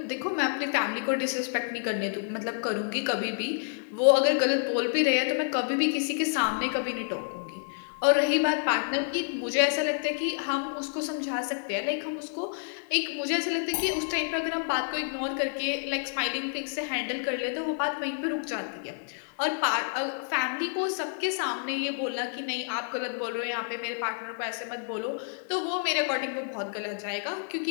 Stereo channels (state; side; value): silent; right; digital silence